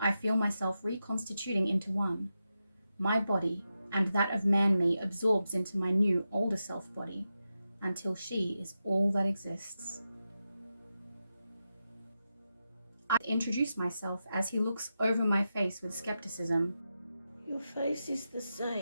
I feel myself reconstituting into one. My body and that of Man-Me absorbs into my new older self body, until she is all that exists. I introduce myself as he looks over my face with skepticism. Your face is the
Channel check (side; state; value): both; inverted; correlation -0.89